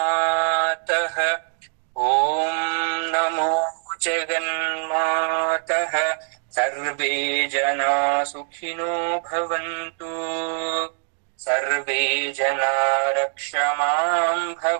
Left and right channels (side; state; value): left; silent; 60 dB below the other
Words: ಓಂ ನಮೋ ಜಗನ್ಮಾತಃ. ಸರ್ವೇ ಜನಾ ಸುಖಿನೋ ಭವಂತು. ಸರ್ವೇ ಜನಾ ರಕ್ಷಮಾಂ